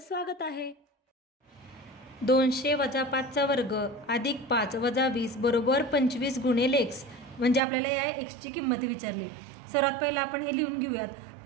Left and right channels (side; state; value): left; drops out; at 7.6 s